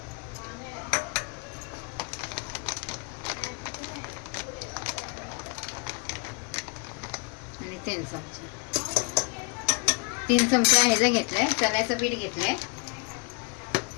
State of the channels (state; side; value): quieter; right; 34.0 dB